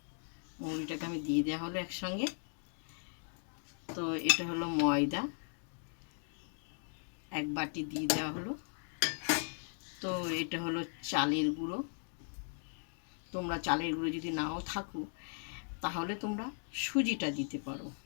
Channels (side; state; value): right; silent; 53 dB below the other